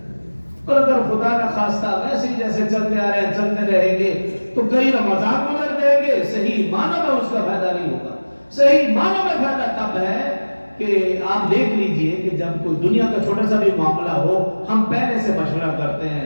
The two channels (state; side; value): inverted; both; correlation -1.00